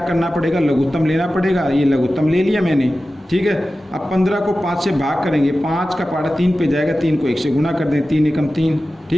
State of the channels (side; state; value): both; normal; correlation 0.95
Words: पड़ेगा, लघुत्तम लेना पड़ेगा। ये लघुत्तम ले लिया मैंने, ठीक है। अब 15 को 5 से भाग करेंगे, 5 का पारा 3 पे जाएगा, 3 को 1 से गुना कर दें, 3 एकम 3,